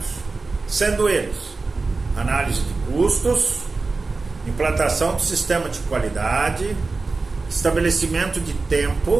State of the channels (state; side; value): quieter; left; 3.9 dB